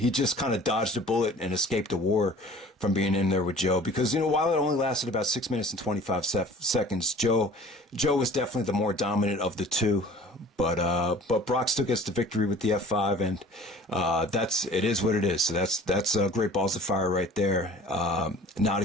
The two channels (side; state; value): both; normal; correlation 0.46